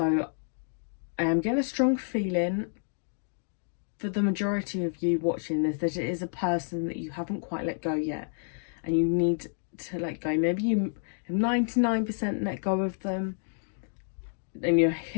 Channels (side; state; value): right; silent; digital silence